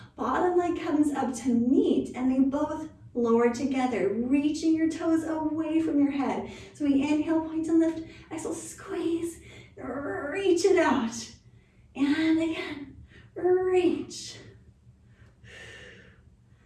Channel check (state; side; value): identical; both; correlation 1.00